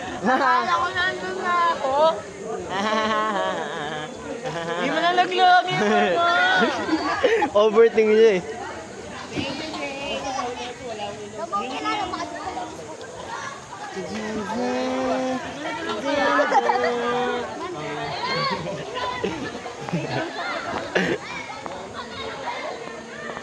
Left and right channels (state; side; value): identical; both; correlation 1.00